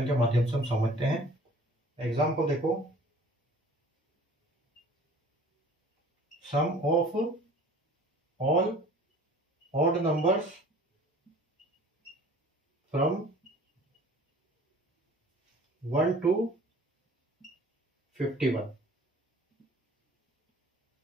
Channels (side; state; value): both; normal; correlation 0.49